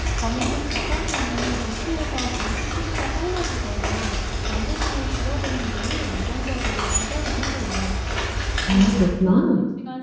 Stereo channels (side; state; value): both; identical; correlation 1.00